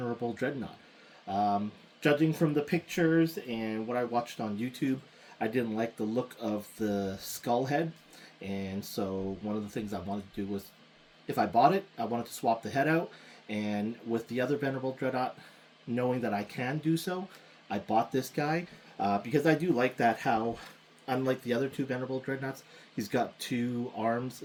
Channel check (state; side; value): identical; both; correlation 1.00